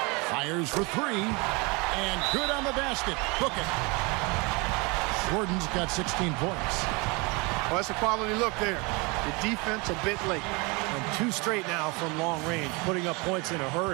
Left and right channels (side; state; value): left; quieter; 28.0 dB